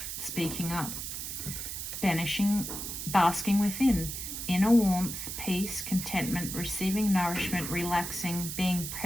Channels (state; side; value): noise; right; hiss, 6 dB below the sound